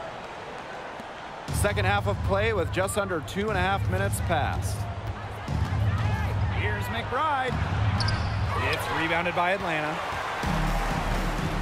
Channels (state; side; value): identical; both; correlation 1.00